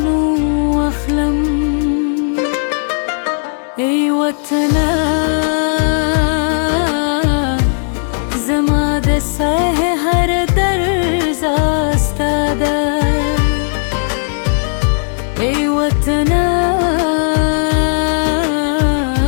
و اخلم ای وطنه زما د سه هر درز استاده ای وطنه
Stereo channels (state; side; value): silent; right; digital silence